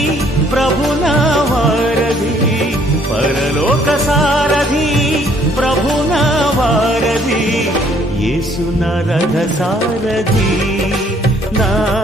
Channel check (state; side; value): normal; both; correlation 0.63